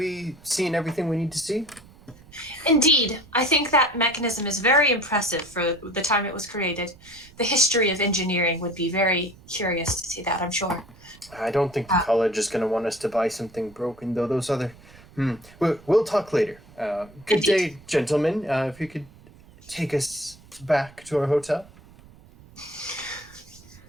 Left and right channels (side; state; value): right; noise; rumble, 23 dB below the sound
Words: seen everything we need to see? Indeed, I think that mechanism is very impressive for the time it was created. The history of engineering would be very curious to see that, I'm sure. I don't think the college is going to want us to buy something broken, though. Those other... We'll talk later. Good day, gentlemen. If you could take us back to our hotel.